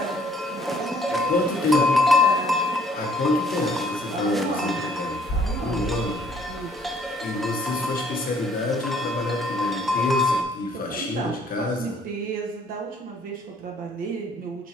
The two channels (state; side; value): normal; both; correlation 0.62